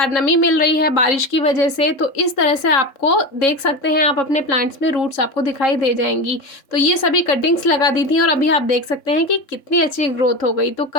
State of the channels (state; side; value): late; right; 3.7 ms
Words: नमी मिल रही है बारिश की वजह से, तो इस तरह से आपको देख सकते हैं, आप अपने प्लांट्स में रूट्स आपको दिखाई दे जाएंगी। तो ये सभी कटिंग्स लगा दी थी और अभी आप देख सकते हैं कि कितनी अच्छी ग्रोथ हो गई। तो